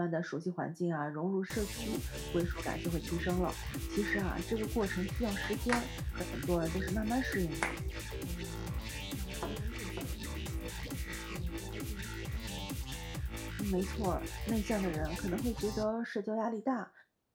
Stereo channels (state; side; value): identical; both; correlation 1.00